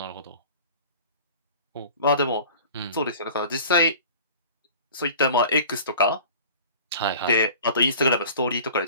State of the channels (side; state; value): both; inverted; correlation -0.42